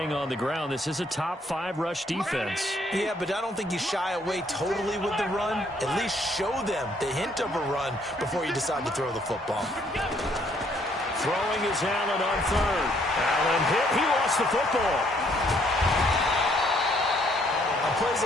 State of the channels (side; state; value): both; normal; correlation 0.67